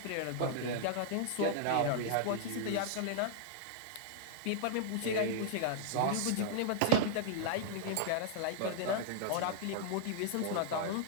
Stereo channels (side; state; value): both; different; correlation -0.01